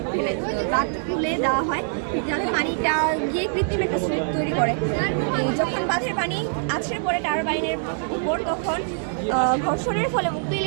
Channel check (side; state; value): left; silent; 63 dB below the other